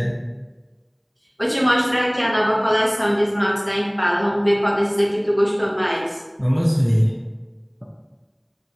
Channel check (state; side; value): identical; both; correlation 1.00